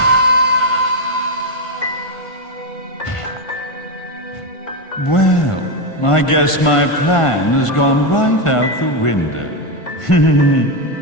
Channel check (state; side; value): late; right; 1.5 ms